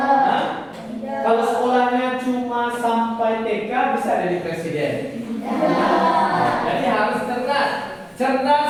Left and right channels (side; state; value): both; identical; correlation 1.00